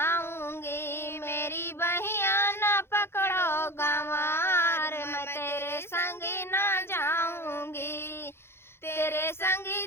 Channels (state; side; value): late; right; 0.12 ms